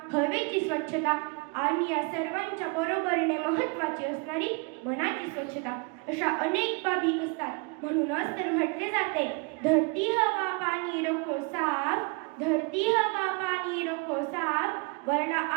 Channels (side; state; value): left; quieter; 31.9 dB